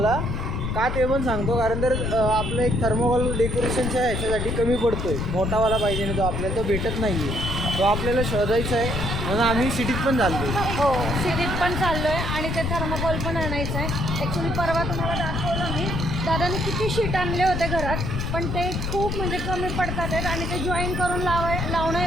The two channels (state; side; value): noise; left; rumble, 2 dB below the sound